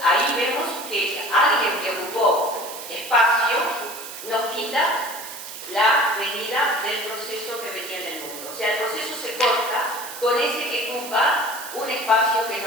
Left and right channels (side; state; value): right; noise; hiss, 11 dB below the sound